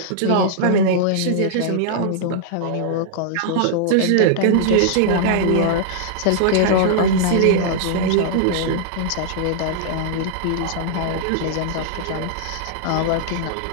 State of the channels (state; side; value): different; both; correlation -0.01